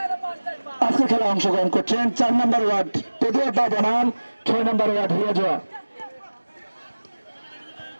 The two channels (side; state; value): both; inverted; correlation -1.00